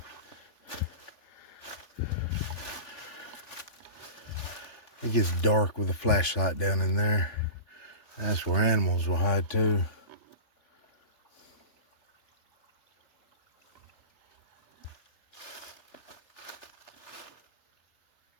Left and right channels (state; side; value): late; right; 3.5 ms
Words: It gets dark with a flashlight down in there. That's where animals will hide too.